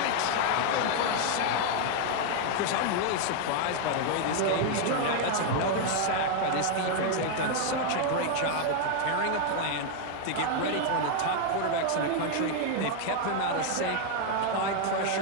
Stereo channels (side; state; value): both; different; correlation 0.00